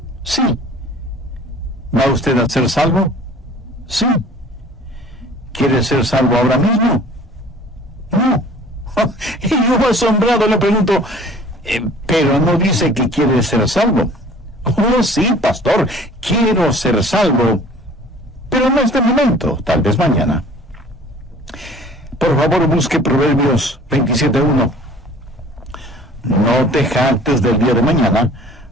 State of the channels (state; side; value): normal; both; correlation 0.49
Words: Sí. ¿Va usted a ser salvo? Sí. ¿Quiere ser salvo ahora mismo? No. Y yo asombrado le pregunto, pero no dice que quiere ser salvo. Oh, sí, pastor, quiero ser salvo, pero no este momento, tal vez mañana. Por favor, busque Proverbios 27:1. No te jactes del día de mañana,